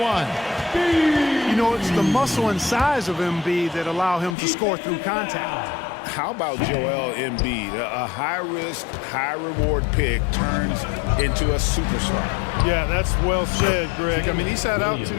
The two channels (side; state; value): right; drops out; at 4.4 s